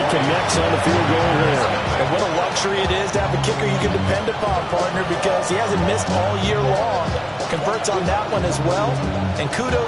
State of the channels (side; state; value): both; identical; correlation 1.00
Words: connects on the field goal there. And what a luxury it is to have a kicker you can depend upon, partner, because he hasn't missed all year long. Converts on that one as well. And